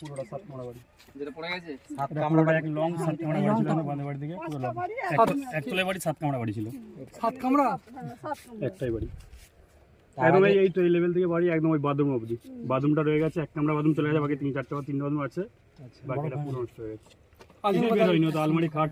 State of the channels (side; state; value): both; identical; correlation 1.00